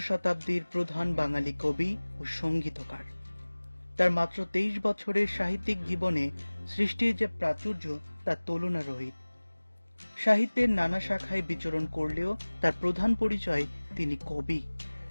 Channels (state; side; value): inverted; both; correlation -1.00